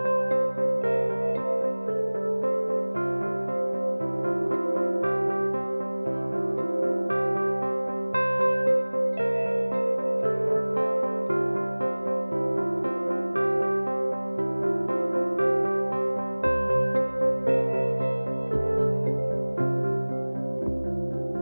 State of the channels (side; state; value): both; inverted; correlation -1.00